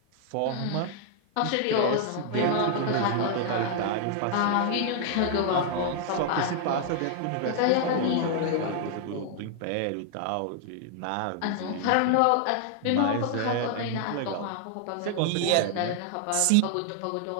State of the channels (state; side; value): different; both; correlation 0.00